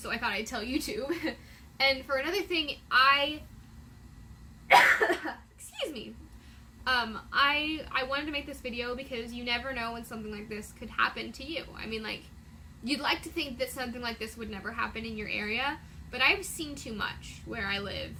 I thought I'd tell you too. And for another thing, excuse me, I wanted to make this video because you never know when something like this could happen to you. I mean, like, you'd like to think that something like this would never happen in your area, but I've seen too much where I live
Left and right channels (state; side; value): identical; both; correlation 1.00